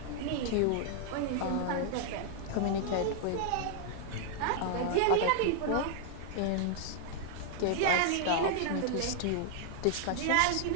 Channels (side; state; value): both; different; correlation 0.00